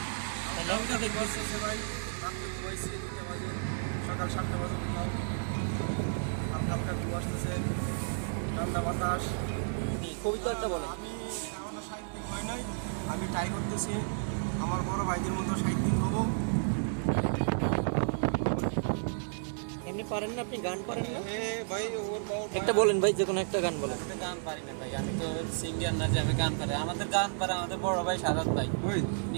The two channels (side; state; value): left; silent; digital silence